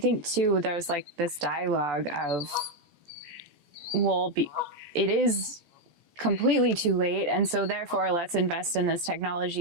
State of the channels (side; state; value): left; late; 14 ms